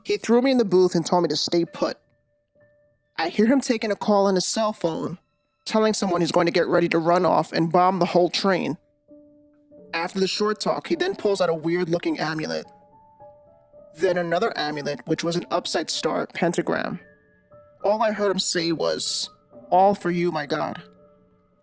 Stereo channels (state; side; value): identical; both; correlation 1.00